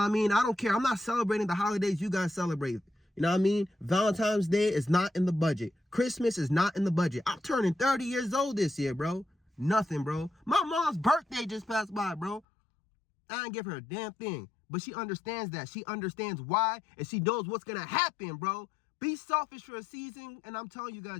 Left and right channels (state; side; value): drops out; right; at 12.4 s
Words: I mean? I don't care. I'm not celebrating the holidays you guys celebrate. You know what I mean? Valentine's Day is not in the budget. Christmas is not in the budget. I'm turning 30 years old this year, bro. Nothing, bro. My mom's birthday just passed by, bro. I didn't give her a damn thing. But she understands that. She understands why, and she knows what's going to happen, bro. Be selfish for a season, and I'm telling you